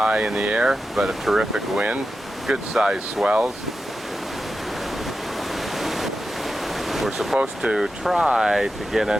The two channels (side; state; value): both; normal; correlation 0.91